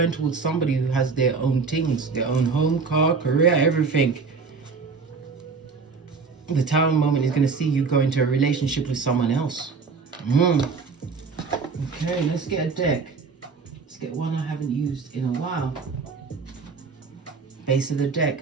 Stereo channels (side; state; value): left; quieter; 4.8 dB